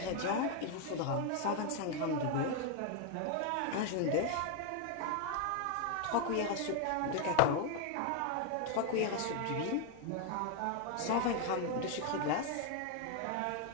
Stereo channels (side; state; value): both; different; correlation 0.01